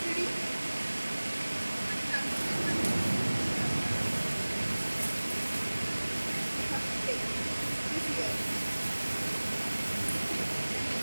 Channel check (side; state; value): both; inverted; correlation -1.00